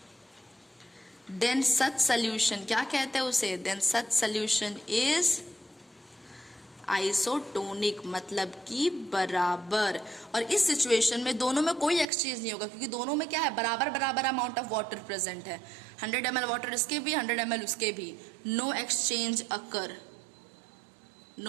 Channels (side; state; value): left; drops out; at 12.1 s